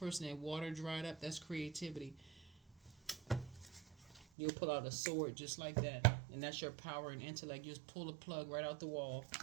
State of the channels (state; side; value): drops out; left; at 4.2 s